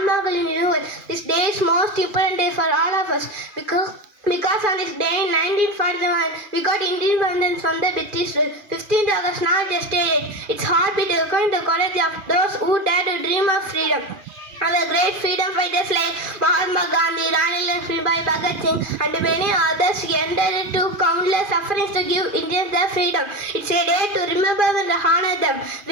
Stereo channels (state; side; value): late; left; 2.4 ms